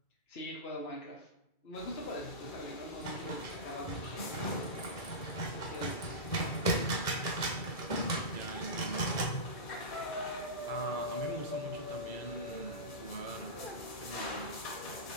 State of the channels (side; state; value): right; late; 2.3 ms